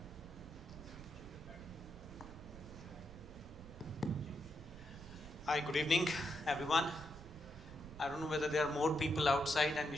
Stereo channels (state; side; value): noise; right; rumble, 15 dB below the sound